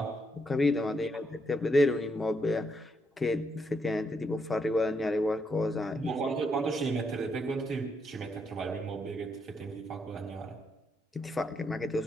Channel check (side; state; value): both; normal; correlation 0.78